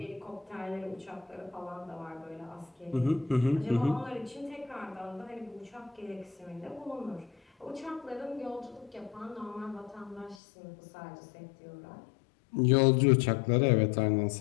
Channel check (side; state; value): right; drops out; at 10.4 s